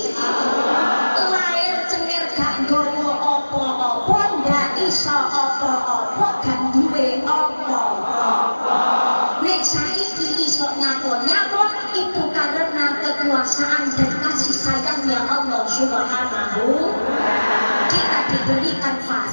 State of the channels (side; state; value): both; inverted; correlation -1.00